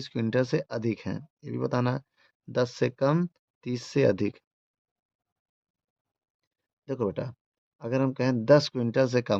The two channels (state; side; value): identical; both; correlation 1.00